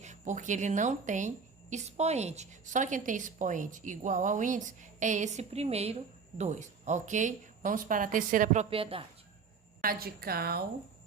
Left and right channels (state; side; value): quieter; left; 5.5 dB